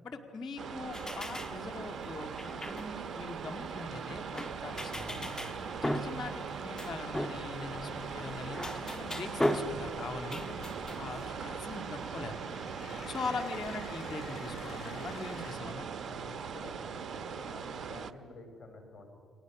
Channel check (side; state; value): both; normal; correlation 0.75